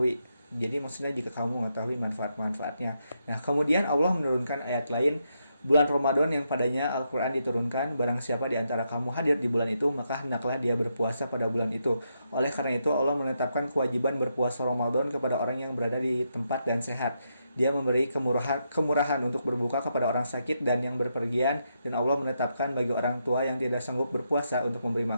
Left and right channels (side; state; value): both; inverted; correlation -0.81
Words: Jadi maksudnya jika kamu mengetahui manfaat-manfaatnya. Nah, kemudian Allah menurunkan ayat lain, bulan Ramadan yang padanya Al-Quran diturunkan, barang siapa di antara kamu hadir di bulan itu, maka hendaklah dia berpuasa pada bulan itu. Oleh karena itu Allah menetapkan kewajiban berpuasa Ramadan kepada orang yang berada di tempat dan sehat. Dia memberi kemurahan untuk berbuka kepada orang sakit dan yang berpergian, dan Allah menetapkan bagi orang tua yang tidak sanggup berpuasa untuk memberi